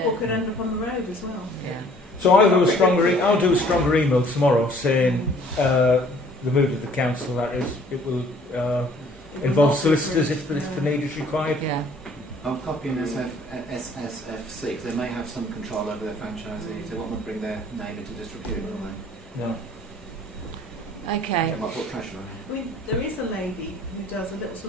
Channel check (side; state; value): both; normal; correlation 0.56